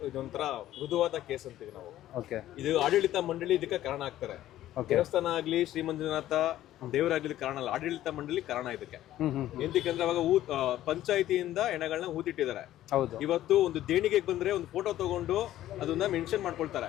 ಇದೊಂಥರ ಮೃದುವಾದ ಕೇಸ್ ಅಂತೀವಿ ನಾವು. ಇದು ಆಡಳಿತ ಮಂಡಳಿ ಇದಕ್ಕೆ ಕಾರಣ ಆಗ್ತಾರೆ. ದೇವಸ್ಥಾನ ಆಗ್ಲಿ, ಶ್ರೀ ಮಂಜುನಾಥ ದೇವರಾಗ್ಲಿ ಕಾರಣ ಅಲ್ಲ, ಆಡಳಿತ ಮಂಡಳಿ ಕಾರಣ ಇದಕ್ಕೆ. ಎಂತಕ್ಕಂದ್ರೆ ಅವಾಗ ಪಂಚಾಯಿತಿಯಿಂದ ಹೆಣಗಳನ್ನ ಹೂತಿಟ್ಟಿದ್ದಾರೆ. ಇವತ್ತು ಒಂದು ದೇಣಿಗೆಗೆ ಬಂದ್ರೆ ಒಂದು ಫೋಟೋ ತಗೊಂಡು ಅದನ್ನ ಮೆನ್ಷನ್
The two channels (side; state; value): right; quieter; 13.5 dB